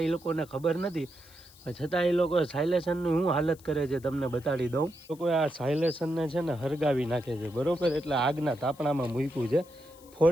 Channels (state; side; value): noise; left; hiss, 25 dB below the sound